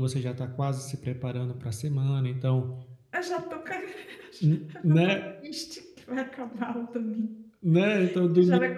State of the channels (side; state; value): both; identical; correlation 1.00